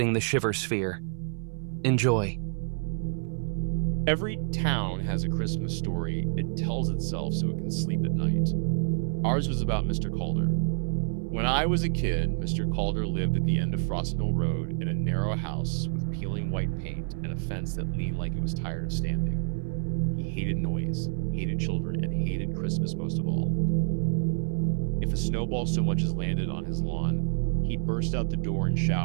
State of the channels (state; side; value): silent; left; 58 dB below the other